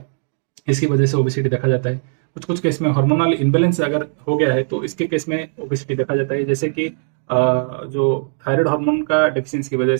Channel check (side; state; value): left; silent; digital silence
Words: इसकी वजह से ओबेसिटी देखा जाता है। कुछ कुछ केस में हार्मोनल इम्बैलेंस अगर हो गया है तो इसके केस में ओबेसिटी देखा जाता है। जैसे कि जो थायराइड हार्मोन का डेफिशिएंसी की वजह